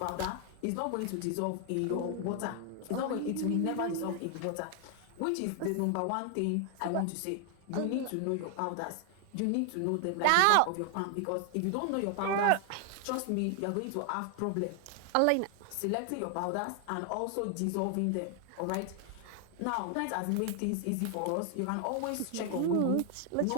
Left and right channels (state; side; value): different; both; correlation 0.00